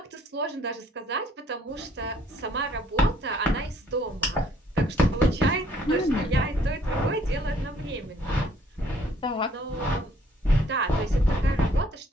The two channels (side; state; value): both; normal; correlation 0.62